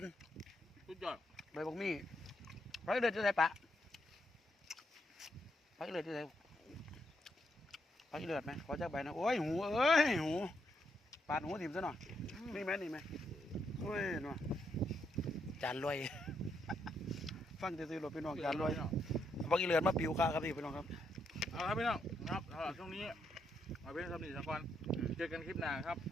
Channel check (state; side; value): normal; both; correlation 0.78